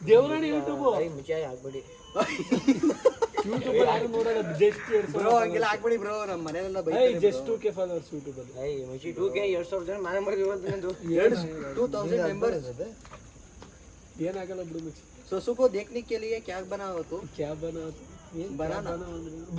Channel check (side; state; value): both; identical; correlation 1.00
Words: ದೇವರಾಣಿ ಯೂಟ್ಯೂಬ್ ಮುಚ್ಚಿ ಹಾಕ್ಬಿಡಿ. ಯೂಟ್ಯೂಬ್ ಯಾರು ನೋಡಲ್ಲ. ಜಸ್ಟ್ ಬ್ರೋ ಹಂಗೆಲ್ಲ ಹಾಕ್ಬಿಡಿ ಬ್ರೋ, ನಮ್ಮ ಮನೆಯಲ್ಲ ಜಸ್ಟ್ 2K ಫಾಲೋವರ್ಸ್ ಯೂಟ್ಯೂಬ್ ಅಲ್ಲಿ. ಮುಚ್ಚಿ 2K 2,000 ಜನ ಮನೆ ಮಾಡಿದ್ವಿ. 2000 मेंबर्स. ಏನಾಗಲ್ಲ ಬಿಡು ಮುಚ್ಚಿ. सोसू को देखने के लिए क्या बना हो तू? ಕ್ಯಾ ಬನಾ बनाना